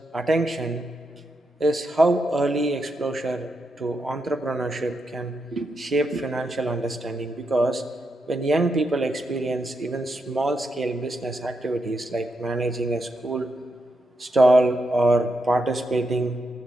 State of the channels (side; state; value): both; normal; correlation 0.83